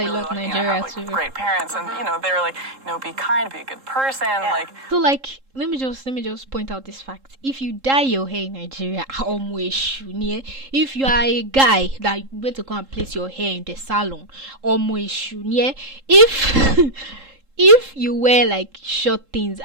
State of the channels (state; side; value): late; left; 3.7 ms